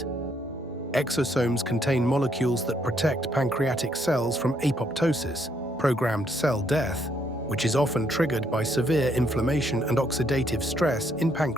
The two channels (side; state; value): both; normal; correlation 0.72